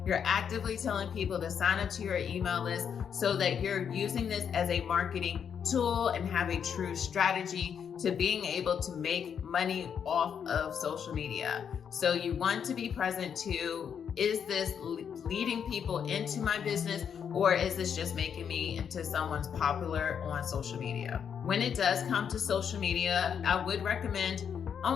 You're actively telling people to sign up to your email list so that you're using this as a marketing tool and have a true strategy to being able to make money off of social media. So you want to be present too. Is this leading people into my business, or is this just making me into someone's popular on social media? When it does come to social media, I would recommend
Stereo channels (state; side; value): quieter; right; 7.7 dB